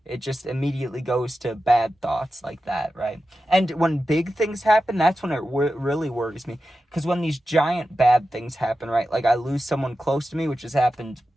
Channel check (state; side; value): normal; both; correlation 0.92